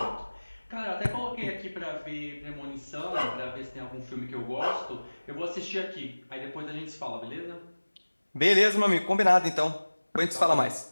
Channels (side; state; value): both; inverted; correlation -1.00